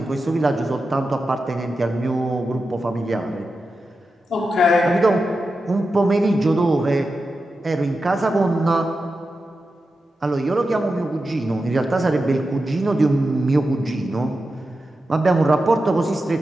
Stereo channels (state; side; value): normal; both; correlation 0.91